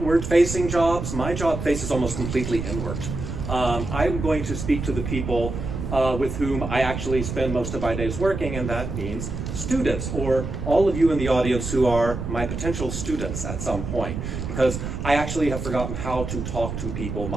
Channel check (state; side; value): noise; right; rumble, 5 dB below the sound